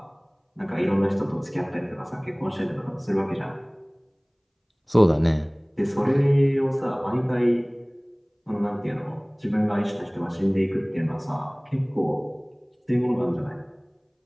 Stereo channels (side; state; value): both; identical; correlation 1.00